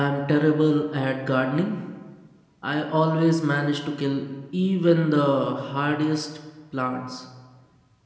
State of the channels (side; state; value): both; identical; correlation 1.00